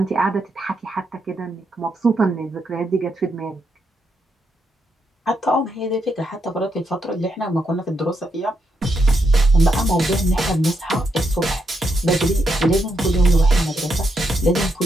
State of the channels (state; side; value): normal; both; correlation 0.80